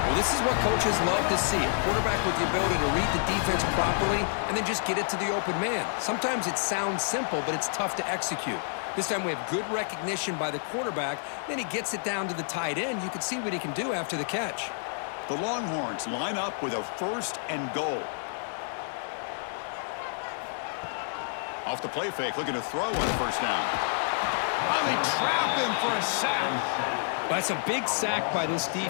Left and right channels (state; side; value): silent; right; digital silence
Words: this is what coaches love to see. A quarterback with the ability to read the defense properly and then just get it to the open man. Sometimes it sounds simple, but it's tough to execute. This time we have good recognition by the quarterback. Then he gets it down to the tight end. You can see what he can do after the catch. The Longhorns line up with a first and goal. Off the play fake, looking to throw on the first down. Oh, they trap him for a sack. That's a big sack by this